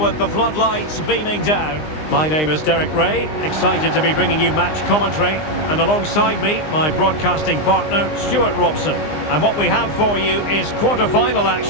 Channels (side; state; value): right; late; 20 ms